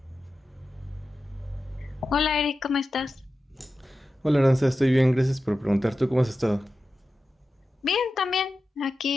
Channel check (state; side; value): normal; both; correlation 0.93